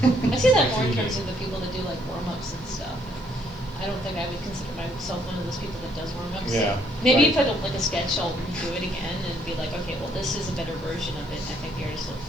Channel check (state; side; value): noise; right; hiss, 30 dB below the sound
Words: I see that more in terms of the people that do like warm-ups and stuff. I don't think I would consider myself one of those people that does warm-ups. Yeah. Maybe right. if I don't like a sketch, I'll redo it again and be like, okay, well, this is a better version of it. And I think the artist, the